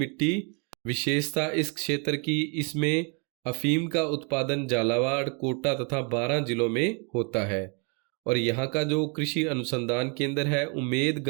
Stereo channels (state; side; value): quieter; left; 35.6 dB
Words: विशेषता इस क्षेत्र की, इसमें अफीम का उत्पादन झालावाड़, कोटा तथा बारां जिलों में होता है। और यहाँ का जो कृषि अनुसंधान केंद्र है